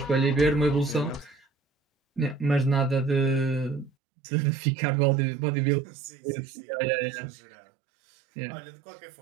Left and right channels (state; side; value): drops out; left; at 3.9 s